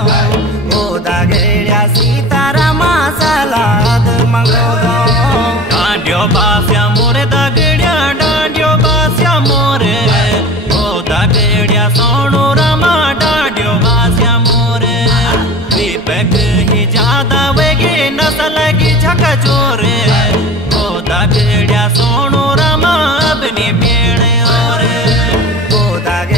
ओ दागेड्या सीतारामा सलाद मंगोदो डांडियो बास्या मोरे दागेड्या डांडियो बास्या मोरे ओ दागेड्या सोणू रमा डांडियो बास्या मोरे दीपक ही ज्यादा वेगी नसल की झक जोरे ओ दागेड्या सोणू रमा अपनी पेड़ और ओ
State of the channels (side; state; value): left; noise; rumble, 20 dB below the sound